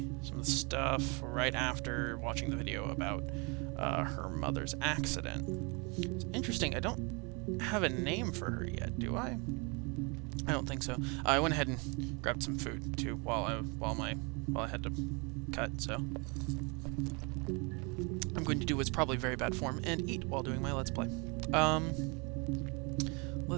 stuff right after watching the video about her mother's accident. It's interesting, I don't have a name for her yet, do I? I don't think so. I went ahead and grabbed some food too while I had to cut, so I'm going to do what's probably very bad form and eat while doing my Let's Play.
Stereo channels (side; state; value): left; quieter; 31.1 dB